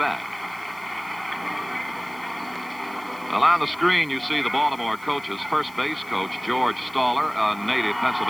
bat. Well, on the screen, you see the Baltimore coaches. First base coach George Staller, a native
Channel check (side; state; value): left; noise; hiss, 23 dB below the sound